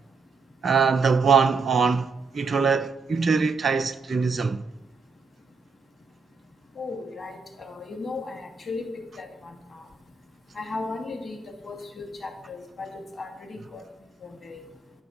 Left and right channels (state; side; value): quieter; left; 4.5 dB